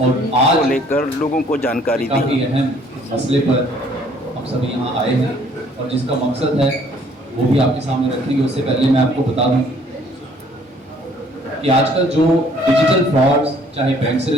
लेकर लोगों को जानकारी दी। काफ़ी अहम मसले पर हम सभी यहाँ आए हैं और जिसका मकसद है वो भी आपके सामने रखेंगे। उससे पहले मैं आपको बता दूं कि आजकल जो डिजिटल फ्रॉड्स चाहे बैंक से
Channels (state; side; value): normal; both; correlation 0.60